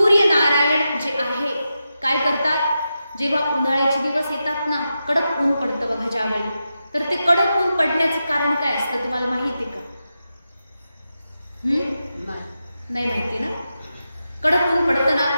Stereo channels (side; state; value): both; inverted; correlation -0.89